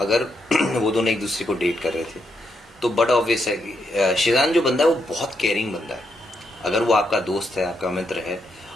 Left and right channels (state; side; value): normal; both; correlation 0.80